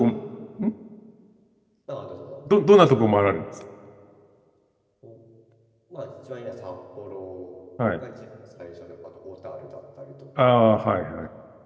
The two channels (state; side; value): identical; both; correlation 1.00